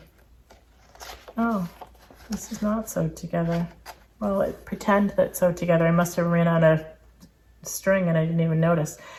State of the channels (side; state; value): both; identical; correlation 1.00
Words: oh, this is not sewed together. Well, pretend that's sewed together. I must have ran out of string and I didn't even notice.